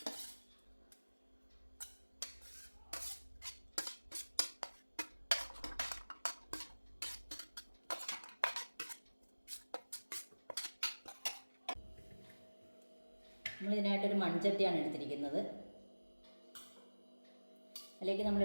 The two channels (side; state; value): both; inverted; correlation -1.00